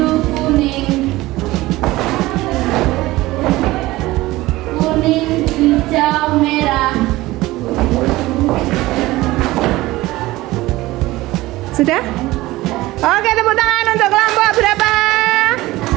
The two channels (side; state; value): left; quieter; 18.4 dB